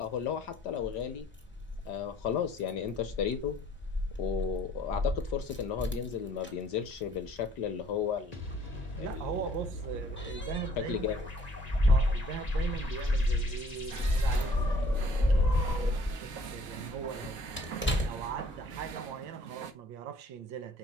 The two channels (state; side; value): normal; both; correlation 0.56